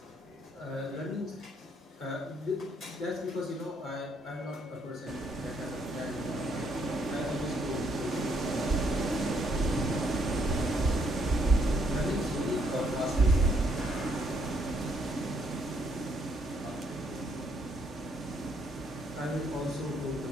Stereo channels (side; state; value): both; normal; correlation 0.71